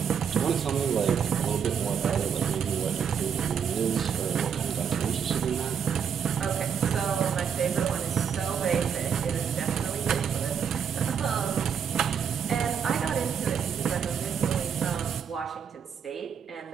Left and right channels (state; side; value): quieter; left; 7.4 dB